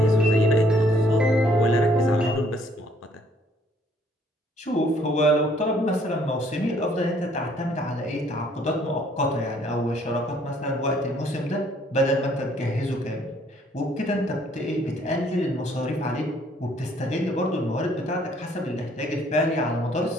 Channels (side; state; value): both; normal; correlation 0.63